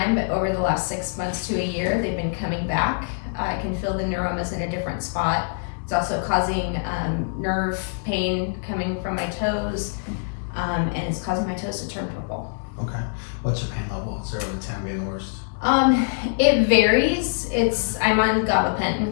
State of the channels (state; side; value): silent; right; digital silence